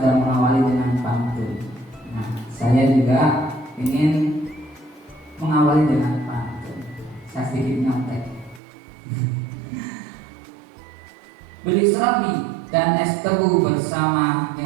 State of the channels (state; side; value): drops out; left; at 8.6 s